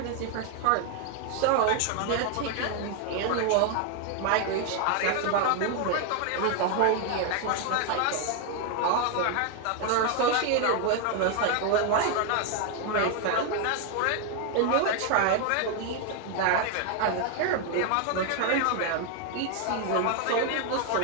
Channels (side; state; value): both; different; correlation 0.01